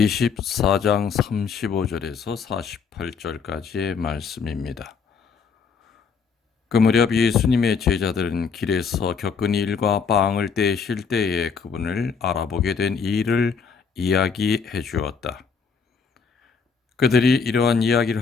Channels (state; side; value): quieter; right; 5.8 dB